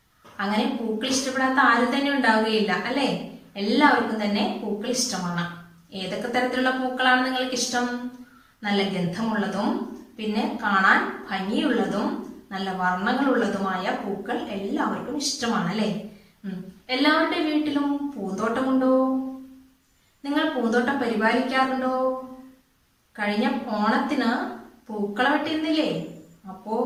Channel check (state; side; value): identical; both; correlation 1.00